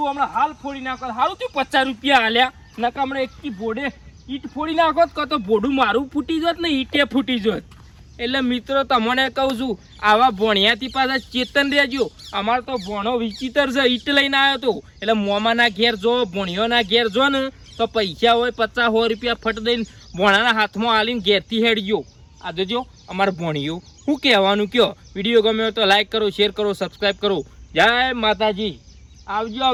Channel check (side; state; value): both; identical; correlation 1.00